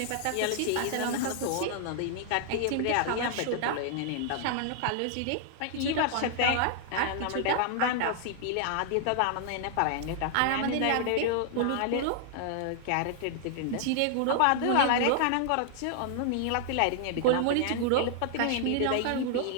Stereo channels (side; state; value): both; different; correlation 0.00